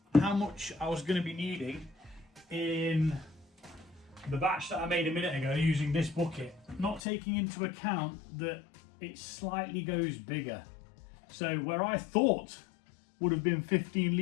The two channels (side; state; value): right; drops out; at 7.0 s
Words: how much I was going to be needing in the batch that I made a minute ago using this bucket, not taking into account that it slightly goes bigger. So where I thought would have been 15